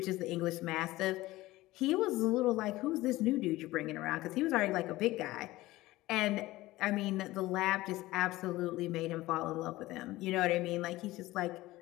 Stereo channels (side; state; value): right; quieter; 18.0 dB